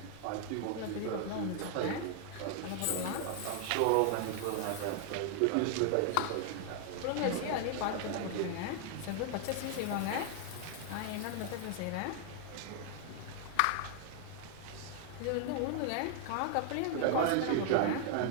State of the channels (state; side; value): different; both; correlation 0.00